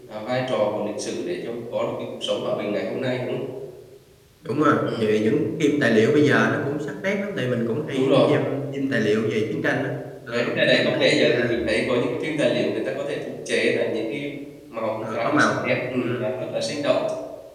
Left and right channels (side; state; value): both; identical; correlation 1.00